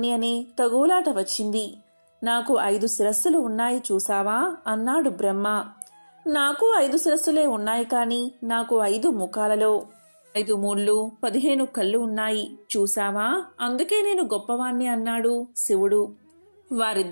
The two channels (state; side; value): inverted; both; correlation -1.00